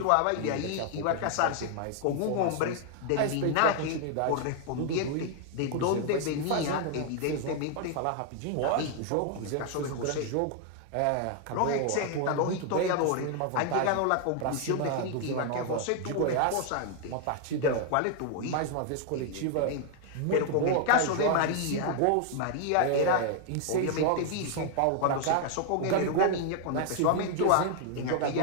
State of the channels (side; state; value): both; different; correlation 0.00